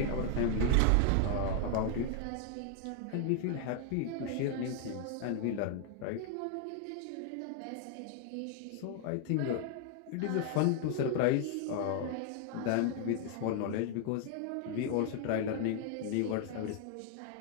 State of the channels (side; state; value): both; different; correlation 0.00